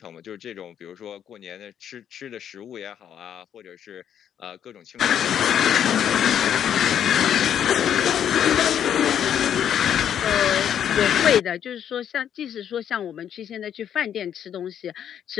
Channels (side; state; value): right; quieter; 9.4 dB